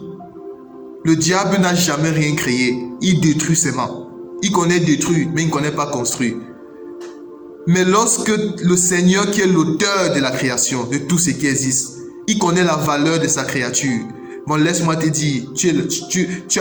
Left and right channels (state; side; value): identical; both; correlation 1.00